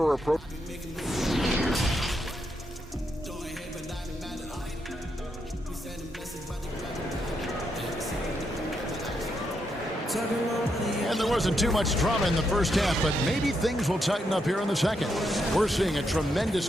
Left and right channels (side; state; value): both; normal; correlation 0.81